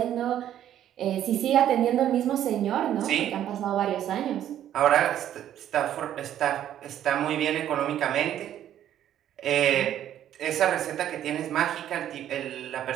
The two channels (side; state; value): left; quieter; 11.1 dB